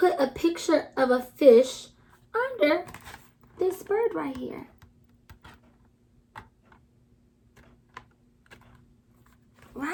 a picture of a fish under this bird right here?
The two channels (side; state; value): both; identical; correlation 1.00